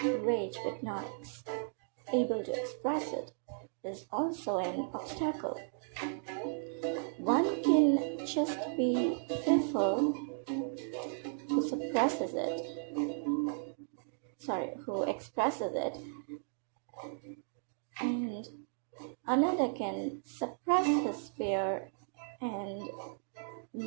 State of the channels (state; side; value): silent; left; digital silence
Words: rage but not able to express it is also an obstacle. One can just be fearful who expresses it, and another can suppress his fear and